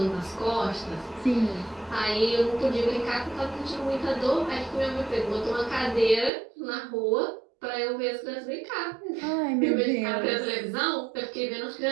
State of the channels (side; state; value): left; drops out; at 6.3 s